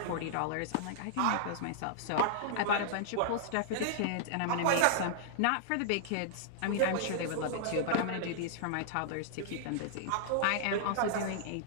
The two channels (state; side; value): different; both; correlation -0.01